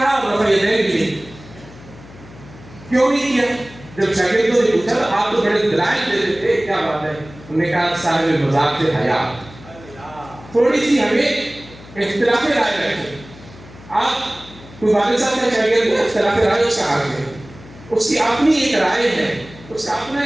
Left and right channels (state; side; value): noise; left; hum, 20 dB below the sound